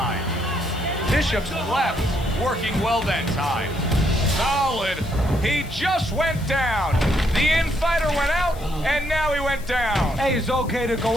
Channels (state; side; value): noise; left; hiss, 20 dB below the sound